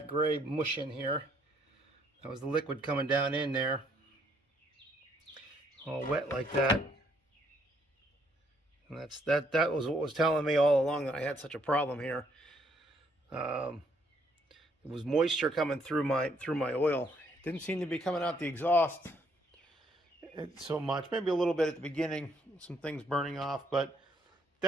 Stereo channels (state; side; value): normal; both; correlation 0.69